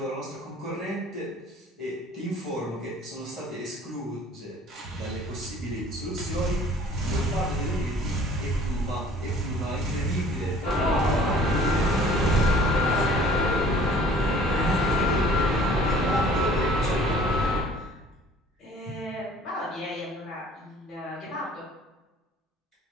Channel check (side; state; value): both; normal; correlation 0.52